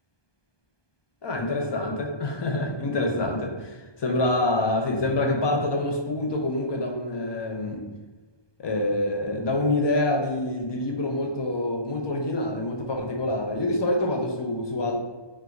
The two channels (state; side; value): late; right; 1.2 ms